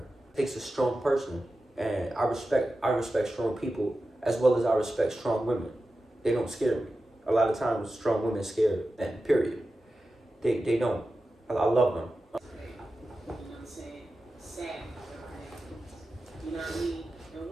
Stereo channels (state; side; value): normal; both; correlation 0.93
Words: It takes a strong person. And I respect strong people, as well as I respect strong women. They don't scare me. A lot of times, strong women scare, and period. They don't. I love them. You know what I'm saying? Sad. You know what I mean? And